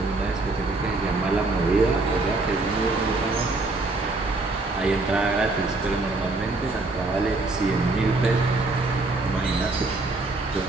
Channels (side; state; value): left; quieter; 3.3 dB